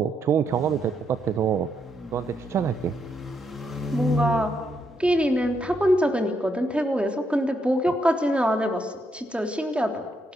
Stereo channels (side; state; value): both; normal; correlation 0.78